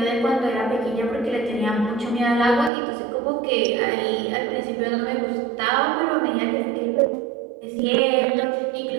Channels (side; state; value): left; drops out; at 2.7 s